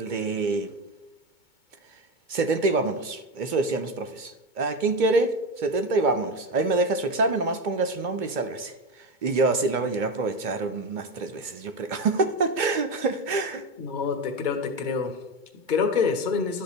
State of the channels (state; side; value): late; left; 2.2 ms